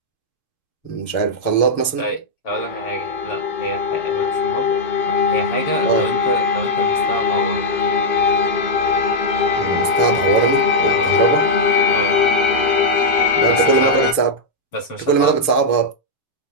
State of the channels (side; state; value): right; late; 6.6 ms